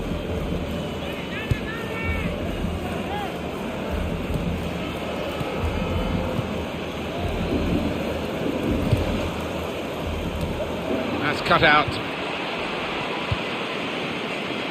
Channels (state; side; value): identical; both; correlation 1.00